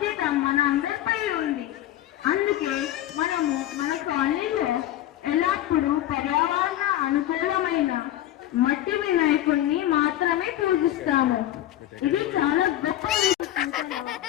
మన అందరిపై ఉంది. అందుకే మనము మన కాలనీలో ఎల్లప్పుడూ పర్యావరణ అనుకూలమైన మట్టి వినాయకుడిని మాత్రమే పూజిస్తాము. ఇది చాలా గొప్ప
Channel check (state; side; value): quieter; right; 13.3 dB